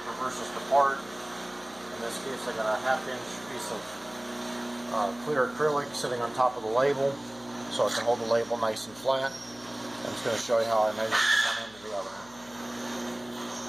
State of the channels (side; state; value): left; noise; hum, 24 dB below the sound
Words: reverses the part. In this case, I got a 1/2-inch piece of clear acrylic sitting on top of the label, so I can hold the label nice and flat. I'm just going to show you how I measure from one end to the other.